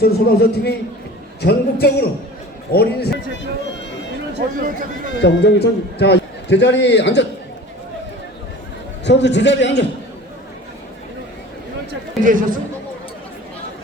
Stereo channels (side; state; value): both; normal; correlation 0.40